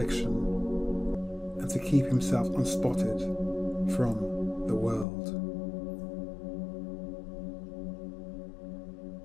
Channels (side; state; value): right; drops out; at 5.1 s